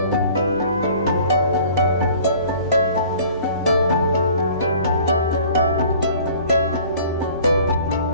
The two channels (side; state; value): both; inverted; correlation -0.50